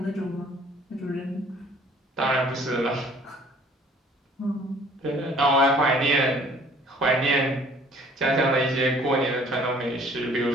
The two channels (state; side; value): normal; both; correlation 0.55